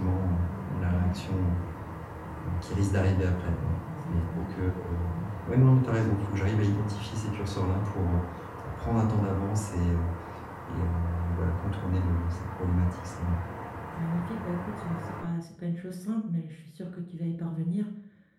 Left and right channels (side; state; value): both; identical; correlation 1.00